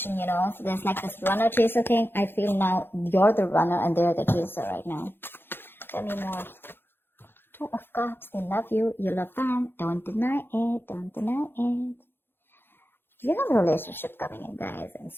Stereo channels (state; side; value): late; right; 0.10 ms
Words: so there's like this runner chaser thing. I feel now you're the runner and they're the chaser right now. Tell me more. 2 of Cups, they love you, you love them. Don't deny it, don't deny it. You have a relationship coming in, guys, and